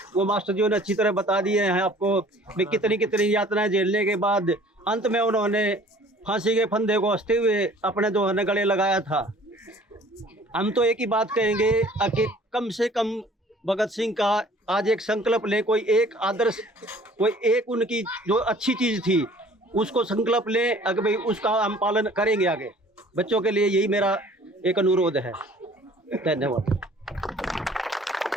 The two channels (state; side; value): normal; both; correlation 0.51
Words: मास्टर जी ने अच्छी तरह बता दिए हैं आपको। कितनी यातनाएं झेलने के बाद अंत में उन्होंने फांसी के फंदे को हंसते हुए अपने जो है गले लगाया था। हम तो एक ही बात कहेंगे कि कम से कम भगत सिंह का आज एक संकल्प लें, कोई एक आदर्श, कोई एक उनकी जो अच्छी चीज़ थी उसको संकल्प लें, अगर भाई उसका हम पालन करेंगे आगे। बच्चों के लिए यही मेरा एक अनुरोध है। धन्यवाद,